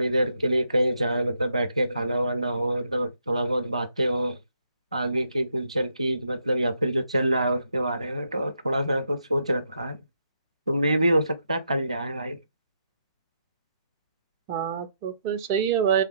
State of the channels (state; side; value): inverted; both; correlation -0.78